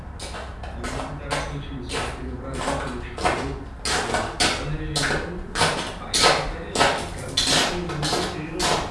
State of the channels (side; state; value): both; identical; correlation 1.00